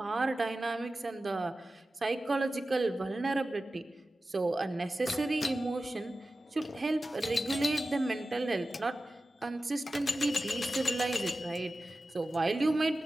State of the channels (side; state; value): both; normal; correlation 0.94